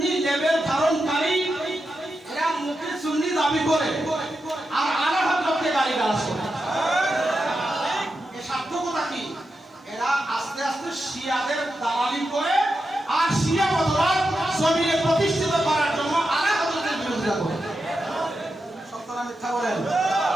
লেভেল ধারণকারী, এরা মুখে সুন্নি দাবি করে আর আলা হযরতকে গালিগালাজ করে। এর সার্থকতা কি? এরা আস্তে আস্তে শিয়াদের দালালি করে আর শিয়া মতবাদ জমিনে প্রতিষ্ঠিত করার জন্য আলা হযরতের বিরোধিতা করে। মিথ্যা বলেন?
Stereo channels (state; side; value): normal; both; correlation 0.88